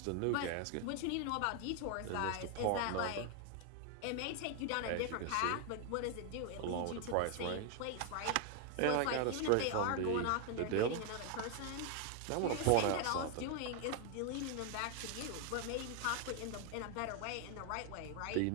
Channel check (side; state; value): both; different; correlation 0.00